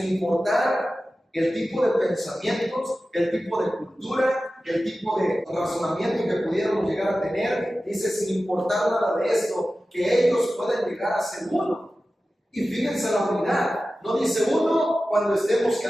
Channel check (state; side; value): normal; both; correlation 0.95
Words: importar el tipo de pensamientos, el tipo de cultura, el tipo de razonamiento que pudiéramos llegar a tener, dice: sin importar nada de esto, que ellos puedan llegar a ser uno. Y fíjense la unidad, no dice uno cuando estemos